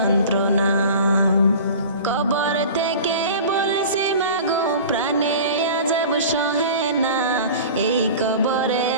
কবর থেকে বলছি মাগো প্রাণে আযাব সহে না, এই কবরে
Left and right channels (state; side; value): inverted; both; correlation -0.38